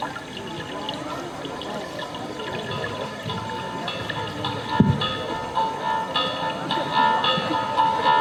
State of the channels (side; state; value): both; identical; correlation 1.00